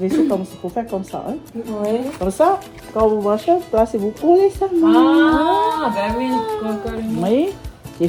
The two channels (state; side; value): identical; both; correlation 1.00